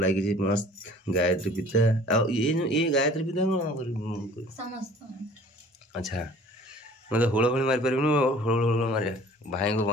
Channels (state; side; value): normal; both; correlation 0.50